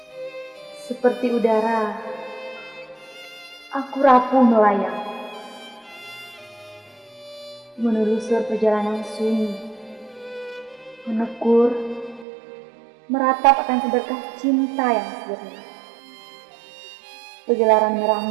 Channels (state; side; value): drops out; left; at 12.2 s